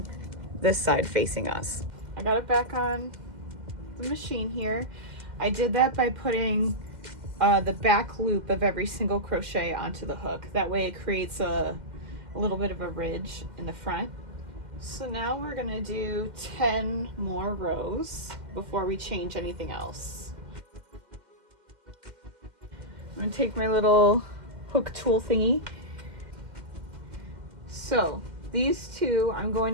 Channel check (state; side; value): late; left; 2.1 ms